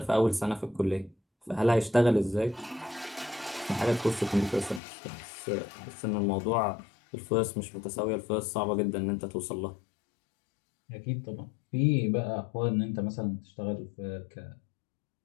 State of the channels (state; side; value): drops out; right; at 4.8 s